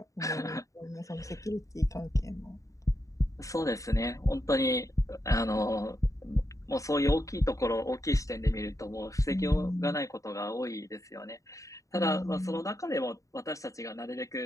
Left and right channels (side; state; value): right; late; 0.16 ms